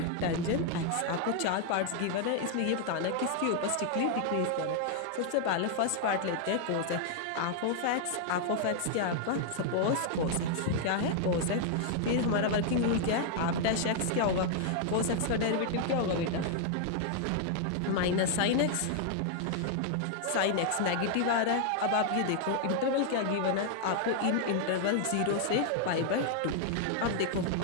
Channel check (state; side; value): different; both; correlation 0.00